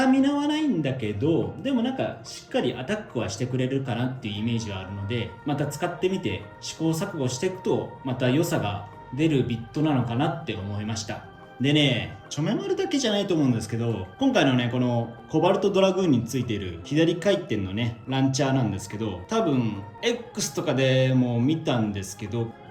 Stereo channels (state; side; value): identical; both; correlation 1.00